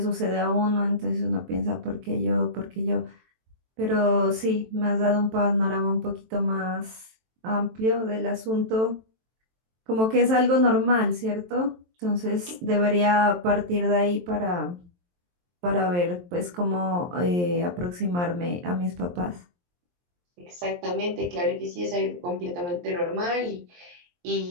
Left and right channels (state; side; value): late; left; 23 ms